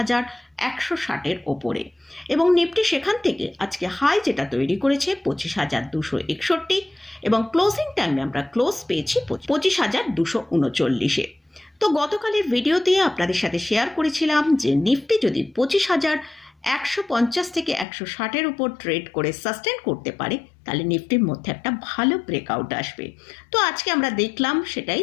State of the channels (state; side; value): drops out; right; at 17.9 s